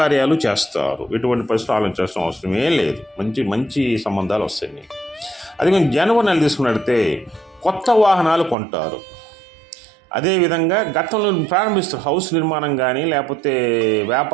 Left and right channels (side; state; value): left; drops out; at 8.6 s